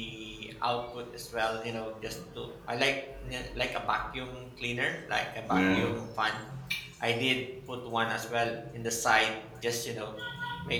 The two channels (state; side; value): identical; both; correlation 1.00